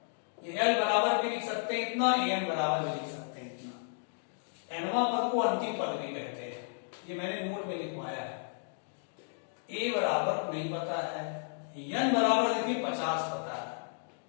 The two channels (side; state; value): right; silent; digital silence